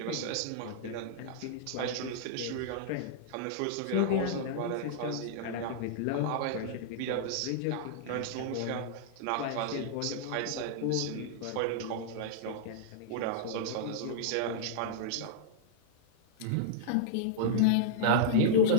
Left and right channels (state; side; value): different; both; correlation -0.02